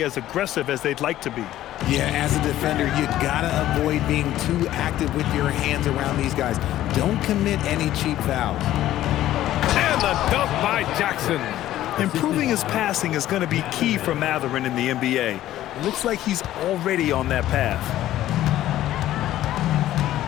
as aggressive as they'd like to be. Yeah, as a defender, you gotta avoid being too active with your hands around these guys. Don't commit any cheap fouls. And the a dunk by Jackson. Improving his passing is going to be key for Mathurin in the NBA. Looks like he's already on that path.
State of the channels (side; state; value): right; quieter; 13.6 dB